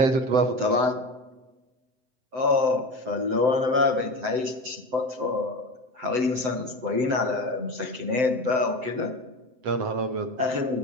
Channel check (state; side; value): late; left; 7.8 ms